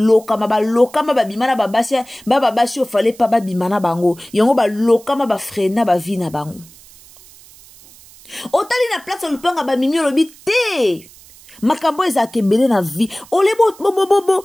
balokama babimana babasi ofale pa babimana bango yango balokama bafrena bavi na bango otali na place lupanga bamimi olobi te makambo ezaka ebele na vie ole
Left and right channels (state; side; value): noise; right; hiss, 23 dB below the sound